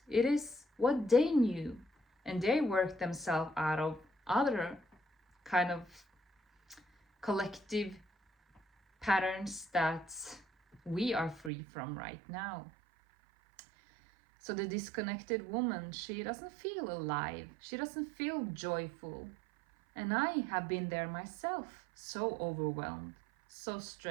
It is what they knew. And they worked themselves out of other kind of collective patterns that we are free from right now. So the disconnected woman, she doesn't feel alive. She doesn't feel joyful. And I have been there myself, so overwhelmed, so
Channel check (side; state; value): left; drops out; at 11.5 s